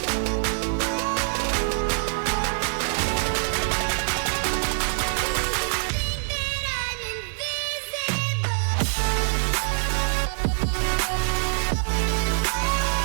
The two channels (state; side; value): silent; left; digital silence